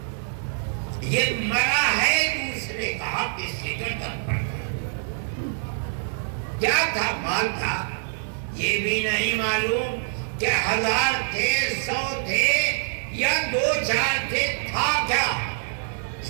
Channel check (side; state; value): left; silent; digital silence